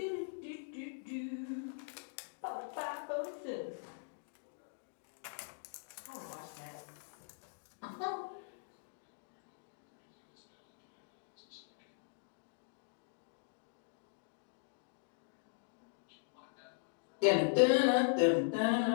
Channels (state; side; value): silent; right; digital silence